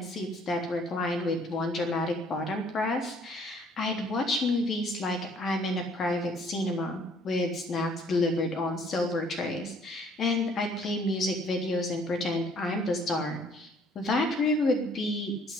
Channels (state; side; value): normal; both; correlation 0.60